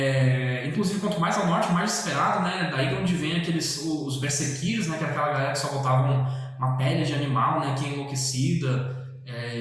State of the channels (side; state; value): both; identical; correlation 1.00